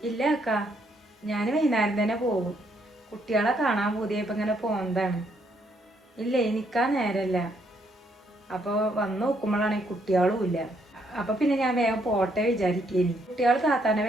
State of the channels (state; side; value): normal; both; correlation 0.72